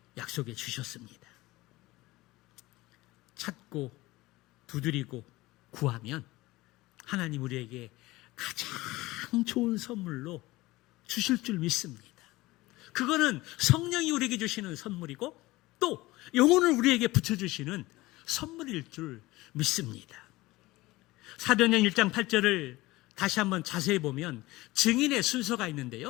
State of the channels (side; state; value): right; quieter; 19.6 dB